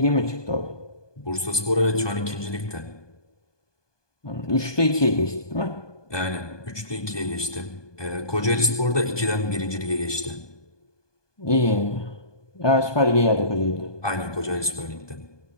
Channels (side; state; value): right; late; 1.2 ms